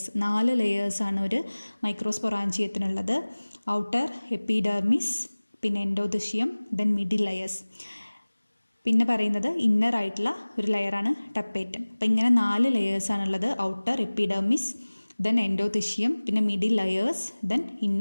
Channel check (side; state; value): both; inverted; correlation -1.00